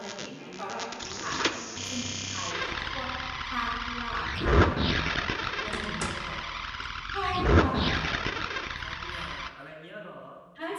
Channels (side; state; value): both; identical; correlation 1.00